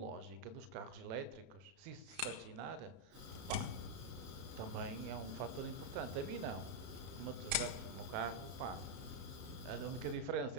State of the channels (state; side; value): late; left; 32 ms